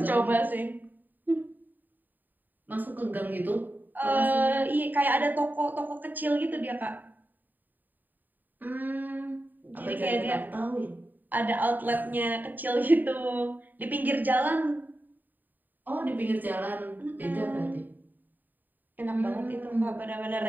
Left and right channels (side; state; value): left; late; 0.088 ms